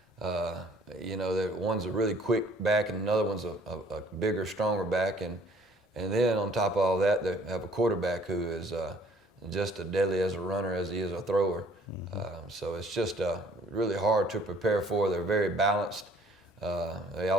one's a really quick back, and another one's a bigger, stronger back. And then on top of all that, they have a quarterback who is just as deadly as a runner as he is a thrower. So it's just really hard to prepare for. They're very balanced. They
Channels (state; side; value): normal; both; correlation 0.57